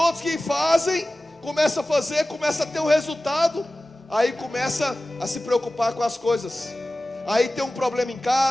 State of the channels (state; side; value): normal; both; correlation 0.96